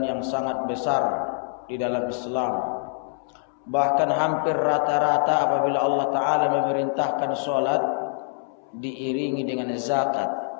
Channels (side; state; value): right; silent; 62 dB below the other